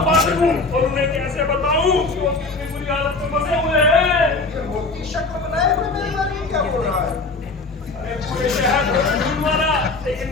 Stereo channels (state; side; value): quieter; right; 3.6 dB